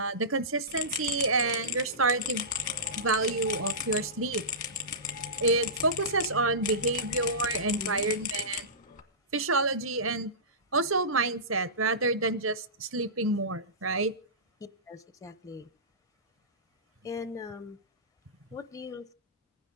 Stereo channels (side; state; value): both; normal; correlation -0.20